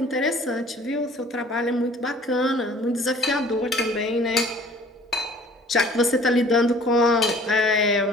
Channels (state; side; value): normal; both; correlation 0.51